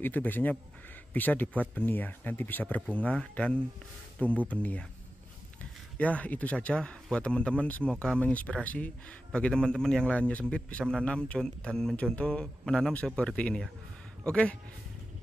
itu biasanya bisa dibuat benih ya, nanti bisa berbunga dan tumbuh benih ya. Ya itu saja buat teman-teman, semoga menginspirasi bagi teman-teman yang lainnya sempit bisa menanam dan mencontoh menanam seperti ini ya. Oke,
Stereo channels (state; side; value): normal; both; correlation 0.93